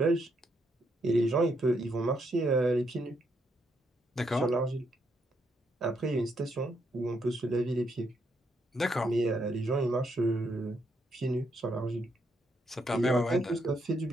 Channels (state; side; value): normal; both; correlation 0.76